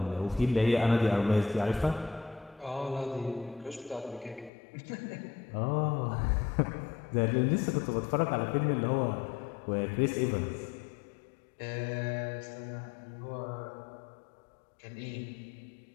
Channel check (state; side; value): drops out; right; at 4.5 s